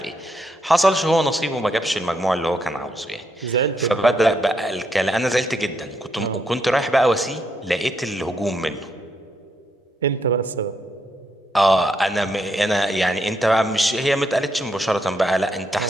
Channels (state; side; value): normal; both; correlation 0.77